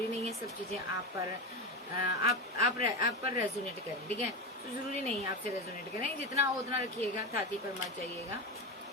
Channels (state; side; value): normal; both; correlation 0.18